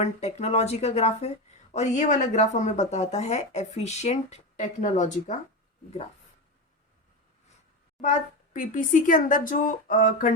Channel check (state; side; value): normal; both; correlation 0.18